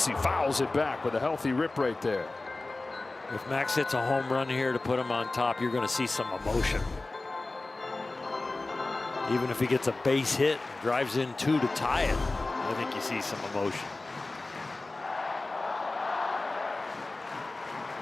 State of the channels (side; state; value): right; quieter; 3.2 dB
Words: fouls it back with a healthy rip right there. If Max hits a home run here to put him on top, you're going to see some emotion. Even if he gets a base hit, drives in 2 to tie it, I think you see some emotion.